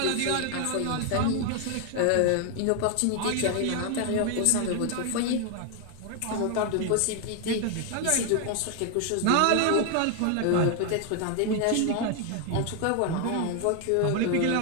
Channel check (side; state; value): both; different; correlation 0.00